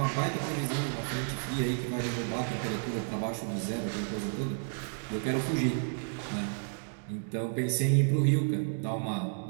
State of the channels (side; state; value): left; silent; digital silence